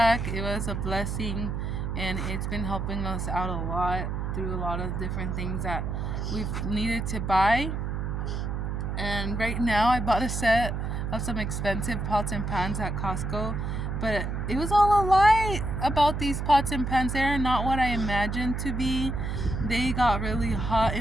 It was a blessing, and it's been helping us out a lot through a lot of different things that we've needed to buy. And right now I bought a set of some expensive pots and pans at Costco, but it was all a lie about these pots and pans. They're not what I imagined to be. They got really hot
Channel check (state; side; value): noise; right; hum, 2 dB below the sound